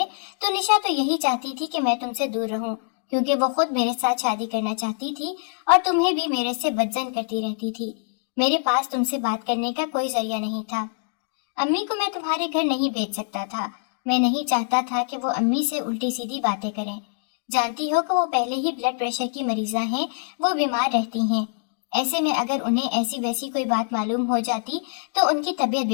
तो निशा तो यही चाहती थी कि मैं तुमसे दूर रहूं, क्योंकि वो खुद मेरे साथ शादी करना चाहती थी और तुम्हें भी मेरे से बदजन करती रहती थी। मेरे पास तुमसे बात करने का कोई जरिया नहीं था। अम्मी को मैं तुम्हारे घर नहीं भेज सकता था। मैं नहीं चाहता था कि वो अम्मी से उल्टी सीधी बातें करें। जानती हो कि वो पहले ही ब्लड प्रेशर की मरीजा हैं, वो बीमार रहती हैं। ऐसे में अगर उन्हें ऐसी वैसी कोई बात मालूम हो जाती तो उनकी तबीयत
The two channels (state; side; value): silent; right; digital silence